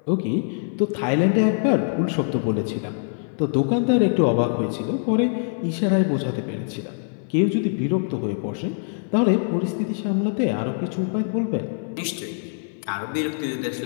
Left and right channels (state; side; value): silent; right; 59 dB below the other